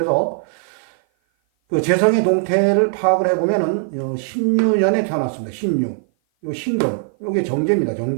그 재성의 동태를 파악을 해 보면은 신유년에 태어났습니다. 신유, 요 신금, 요게 정제입니다.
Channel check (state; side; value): silent; left; 56 dB below the other